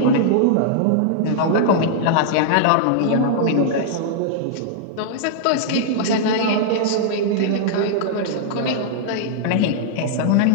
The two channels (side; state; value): both; different; correlation -0.01